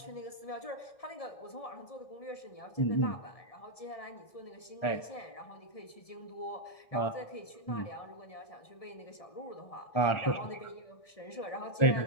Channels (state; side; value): late; right; 1.7 ms